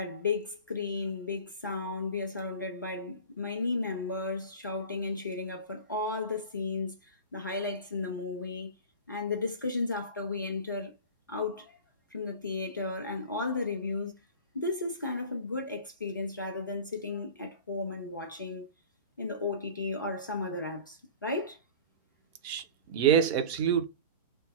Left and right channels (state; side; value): inverted; both; correlation -0.36